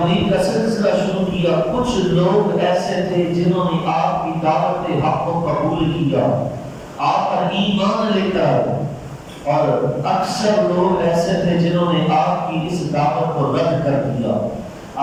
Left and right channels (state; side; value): identical; both; correlation 1.00